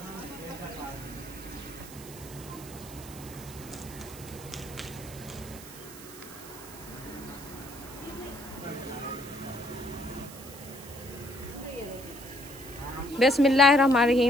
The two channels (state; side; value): noise; right; hiss, 15 dB below the sound